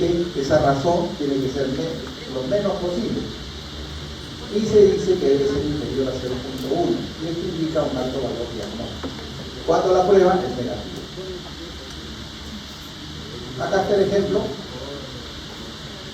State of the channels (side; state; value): both; identical; correlation 1.00